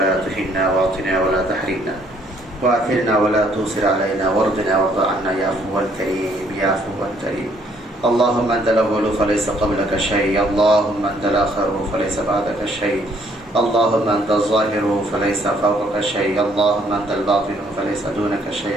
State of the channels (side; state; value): both; normal; correlation 0.65